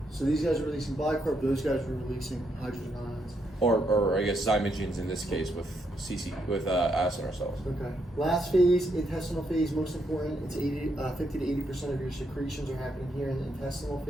So these guys are releasing bicarb, those guys are releasing hydrogen ions. Or I guess zymogens in this case with acinar cells. Okay. Last phase, intestinal phase, most important. It's 50 to 80% of your secretions are happening here in the intestinal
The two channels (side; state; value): both; normal; correlation 0.78